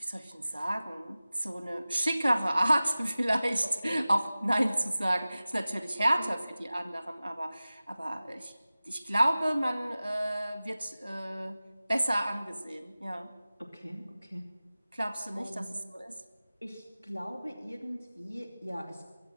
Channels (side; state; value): both; inverted; correlation -0.97